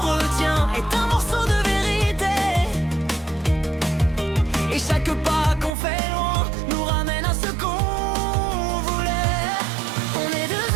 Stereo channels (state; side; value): drops out; left; at 5.7 s